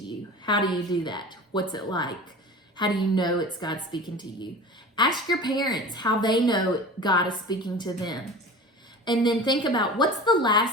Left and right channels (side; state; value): both; normal; correlation 0.37